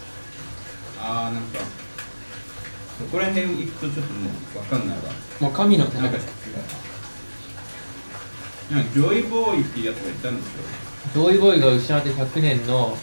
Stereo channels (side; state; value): both; inverted; correlation -1.00